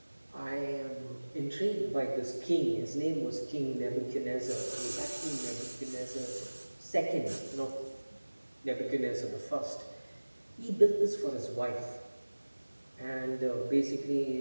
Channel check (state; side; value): inverted; both; correlation -1.00